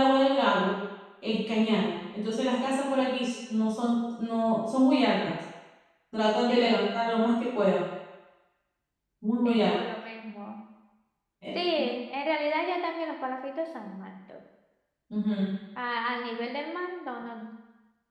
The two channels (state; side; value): identical; both; correlation 1.00